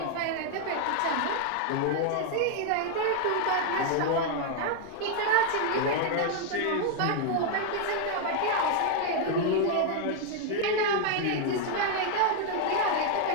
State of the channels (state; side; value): different; both; correlation 0.00